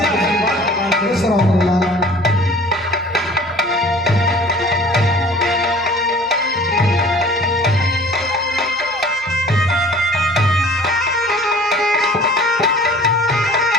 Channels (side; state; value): right; noise; hum, 28 dB below the sound